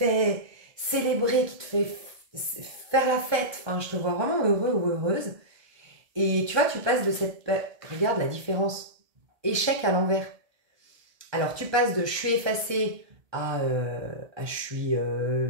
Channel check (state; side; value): late; left; 1.2 ms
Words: célébrer, qui te fait faire la fête. Enfin, je te vois vraiment heureux ou heureuse. Et tu vois, tu passes de cette... Regarde la différence. Échec à l'envers. Alors, tu passes de « je suis effacée » à « je